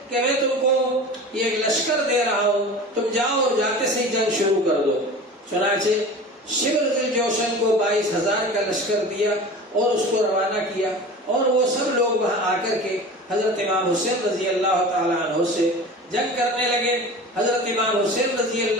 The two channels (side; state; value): both; normal; correlation 0.36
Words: کہ میں تم کو یہ ایک لشکر دے رہا ہوں، تم جاؤ اور جاتے سے ہی جنگ شروع کر دو۔ چنانچہ شمر جوشن کو 22,000 کا لشکر دیا اور اس کو روانہ کیا، اور وہ سب لوگ وہاں آ کر کے حضرت امام حسین رضی اللہ تعالیٰ عنہ سے جنگ کرنے لگے۔ حضرت امام حسین رضی